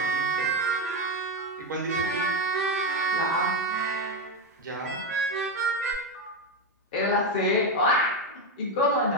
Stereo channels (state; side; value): normal; both; correlation 0.09